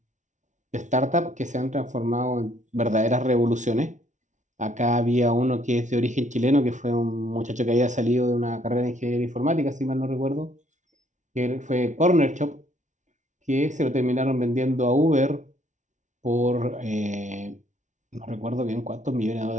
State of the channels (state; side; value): late; left; 0.36 ms